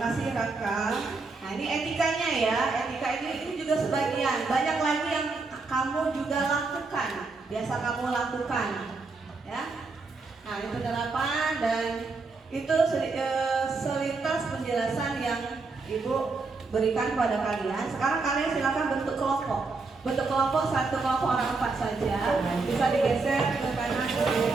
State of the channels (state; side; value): quieter; left; 4.0 dB